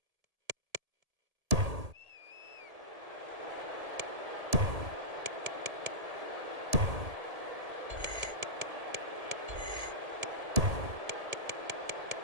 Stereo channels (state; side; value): late; left; 1.7 ms